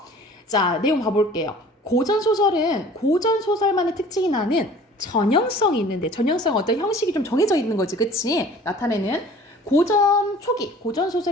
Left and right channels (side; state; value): both; normal; correlation 0.47